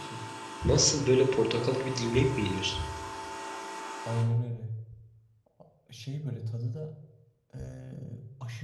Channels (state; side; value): identical; both; correlation 1.00